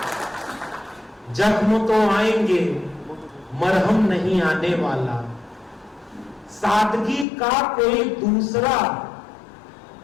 जख्म तो आएंगे, मरहम नहीं आने वाला। सादगी का कोई दूसरा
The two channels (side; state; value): right; drops out; at 7.2 s